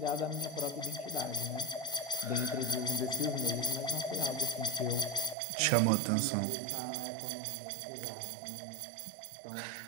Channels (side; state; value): left; drops out; at 5.4 s